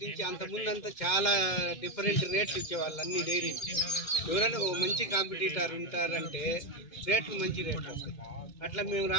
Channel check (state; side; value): late; right; 2.2 ms